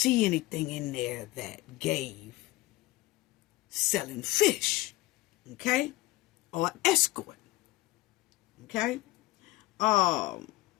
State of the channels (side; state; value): right; quieter; 18.7 dB